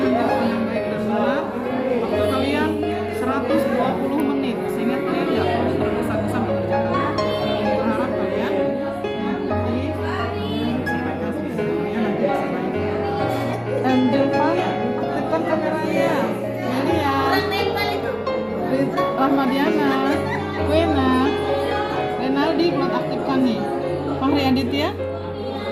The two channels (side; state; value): both; identical; correlation 1.00